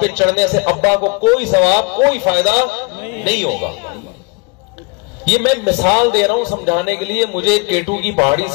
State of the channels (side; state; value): right; quieter; 30.9 dB